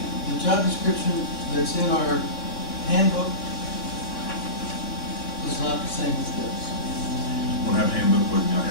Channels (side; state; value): right; late; 3.6 ms